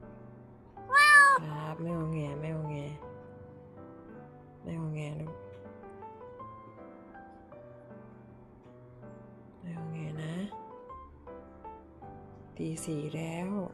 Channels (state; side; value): identical; both; correlation 1.00